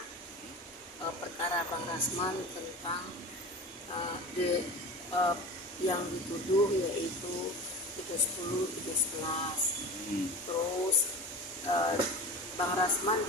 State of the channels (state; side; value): normal; both; correlation 0.34